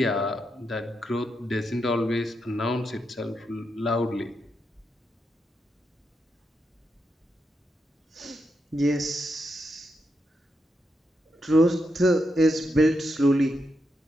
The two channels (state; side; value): normal; both; correlation 0.84